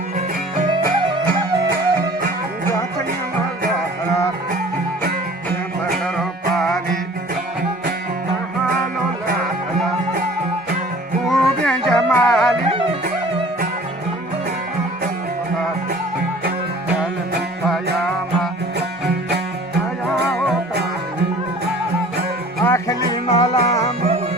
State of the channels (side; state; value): both; normal; correlation 0.48